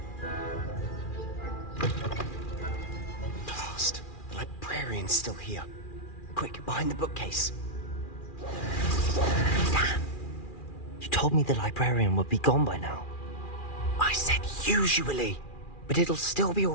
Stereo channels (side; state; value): right; late; 2.4 ms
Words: Blast. The librarian's still here. Quick, behind the bookcase. Damn. You told me the librarian would be gone by now. I said usually, but it'll still be